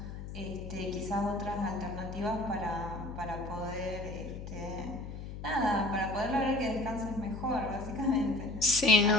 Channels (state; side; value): noise; left; hum, 9 dB below the sound